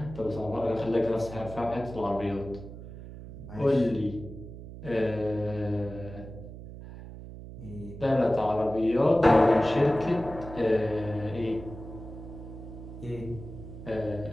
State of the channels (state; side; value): noise; right; hum, 13 dB below the sound